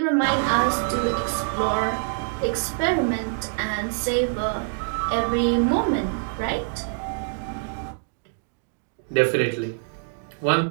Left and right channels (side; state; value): left; silent; digital silence